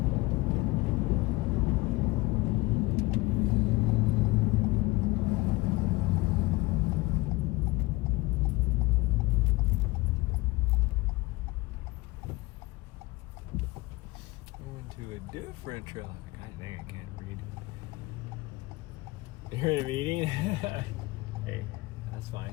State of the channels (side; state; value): right; quieter; 21.6 dB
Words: To a different trail. God dang, I can't read. You're in a meeting? Hey, that's